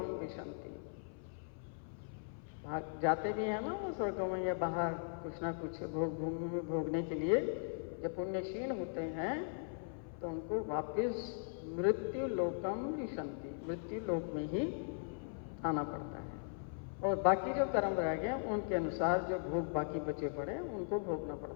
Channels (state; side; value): silent; right; 52 dB below the other